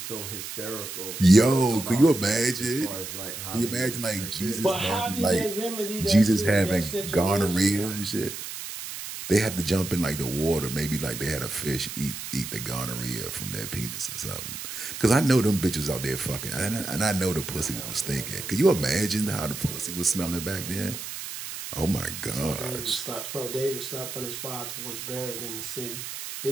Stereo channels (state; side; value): noise; right; hiss, 8 dB below the sound